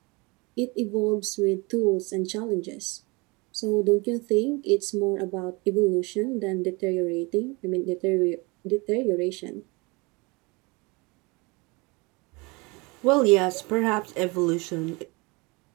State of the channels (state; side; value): quieter; left; 26.7 dB